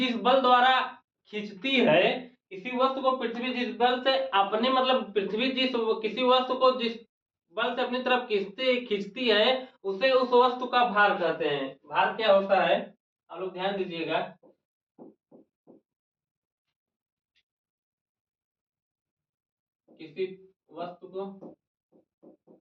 बल द्वारा खींचती है, किसी वस्तु को पृथ्वी जिस बल से अपने मतलब पृथ्वी जिस किसी वस्तु को जिस बल से अपनी तरफ खींचती खींचती है, उसे उस वस्तु का भार कहते हैं। भार क्या होता है, आप लोग ध्यान दीजिएगा। किसी वस्तु को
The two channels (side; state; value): both; identical; correlation 1.00